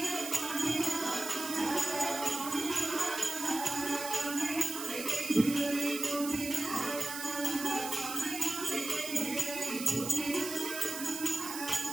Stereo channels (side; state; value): right; noise; hiss, 7 dB below the sound